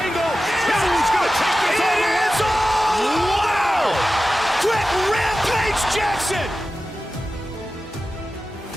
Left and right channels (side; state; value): both; normal; correlation 0.94